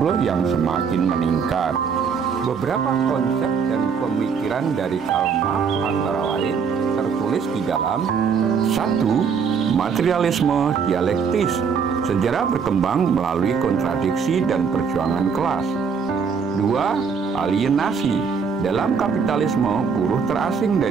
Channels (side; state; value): left; quieter; 6.2 dB